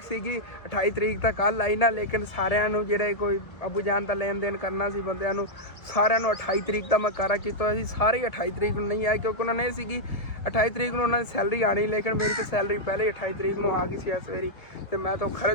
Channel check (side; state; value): right; late; 1.7 ms